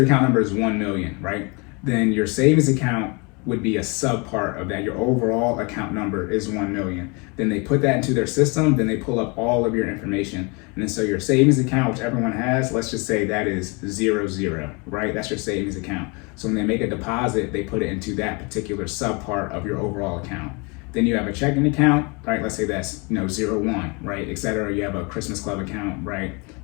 account number is 1 million, right? Then your savings account would be a sub part of that. Your overall account number is 1 million. Then they put that into their system, then they pull up all of your information. And then so your savings account, which everyone has, let's just say that is 00, right? That's your savings account. So when they make a deposit, they put it into that particular sub part of your overall account. Then you have a checking account, right? Let's say that's 01, right? Et cetera. You have a Christmas club account, right?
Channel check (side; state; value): right; quieter; 30.2 dB